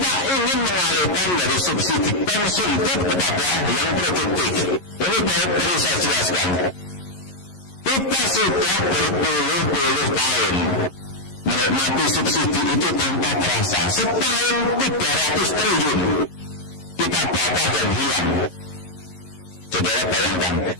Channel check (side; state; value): right; late; 11 ms